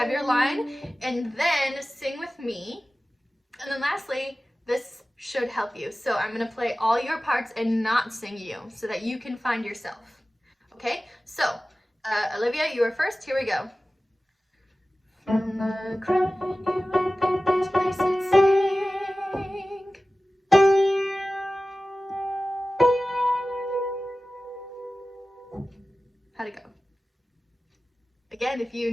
your line, and then sing with me. And then lastly, this should help you. So I'm going to play all your parts and not sing you so that you can find yourself. Okay? So, Olivia, you are first. Here we go. From the crying you and this place it sing. How'd it go? Again, if you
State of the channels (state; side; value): normal; both; correlation 0.96